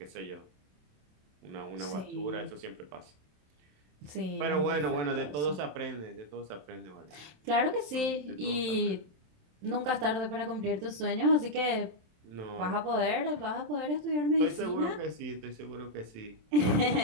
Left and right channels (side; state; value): left; late; 27 ms